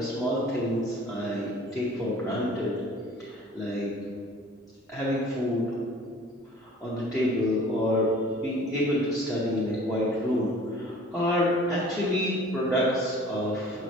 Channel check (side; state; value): both; normal; correlation 0.48